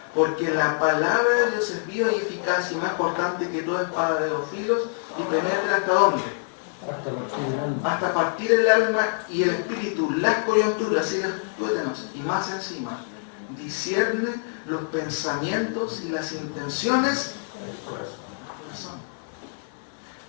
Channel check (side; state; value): right; silent; 57 dB below the other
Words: Porque la palabra de Dios es viva y eficaz y más cortante que toda espada de dos filos y penetra hasta dónde. Hasta partir el alma y el espíritu, las coyunturas y los tuétanos, y más encima, discierne los pensamientos y las intenciones del corazón.